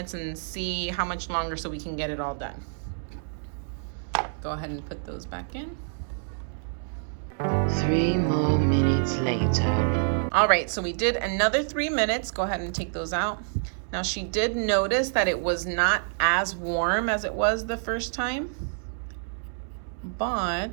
and see how much longer so we can get it all done. Go ahead and put those back in. 3 more minutes later. All right, so we did another 3 minutes. Go ahead and take those out. Now she did notice that it was not as warm as it was the first time,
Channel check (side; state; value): left; silent; 60 dB below the other